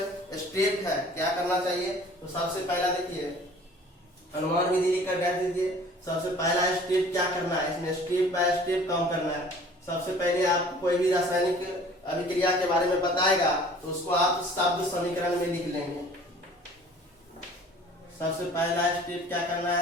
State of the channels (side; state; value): both; normal; correlation 0.49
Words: स्टेप है, क्या करना चाहिए। तो सबसे पहला देखिए अनुमान विधि लिखकर रख दीजिए। सबसे पहला स्टेप क्या करना है, इसमें स्टेप बाय स्टेप काम करना है। सबसे पहले आप कोई भी रासायनिक अभिक्रिया के बारे में बताएगा तो उसको आप शब्द समीकरण में लिख लेंगे। सबसे पहला स्टेप क्या करना